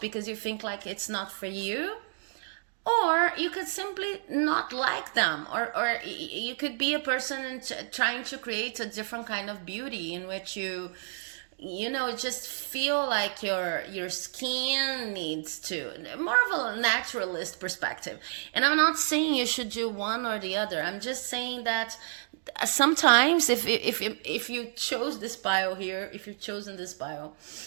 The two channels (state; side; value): silent; left; digital silence